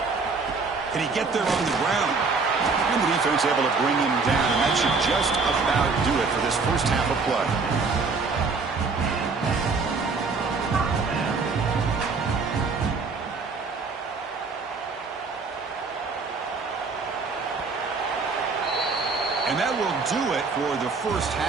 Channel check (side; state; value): left; quieter; 4.4 dB